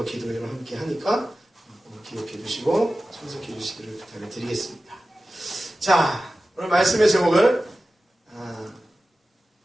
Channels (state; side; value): normal; both; correlation 0.95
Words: 기도회를 함께 하니까 기억해 주시고 참석해 주시기를 부탁을 드리겠습니다. 자 오늘 말씀의 제목을